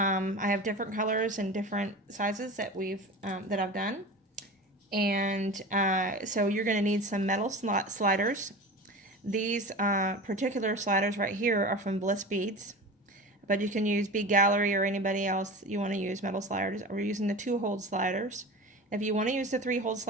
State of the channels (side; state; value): both; normal; correlation 0.32